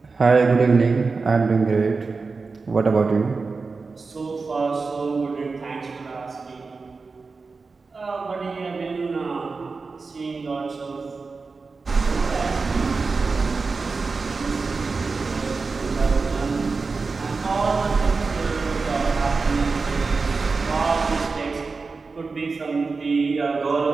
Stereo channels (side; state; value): left; quieter; 4.3 dB